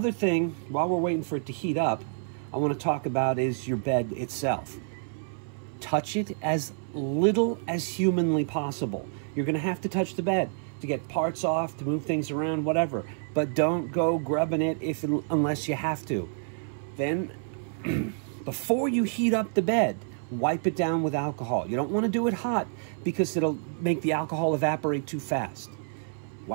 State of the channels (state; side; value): silent; left; 59 dB below the other